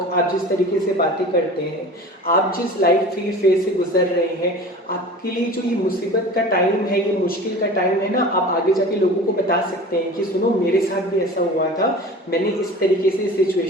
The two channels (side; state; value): both; normal; correlation 0.38